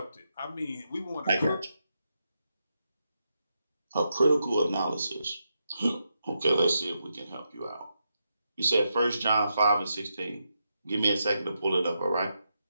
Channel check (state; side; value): inverted; both; correlation -0.84